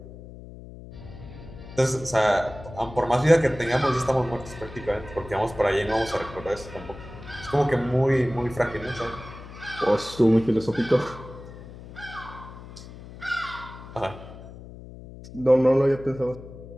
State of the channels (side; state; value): left; noise; hum, 15 dB below the sound